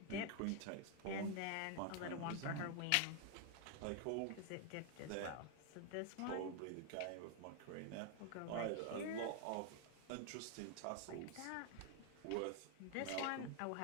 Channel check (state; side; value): different; both; correlation 0.00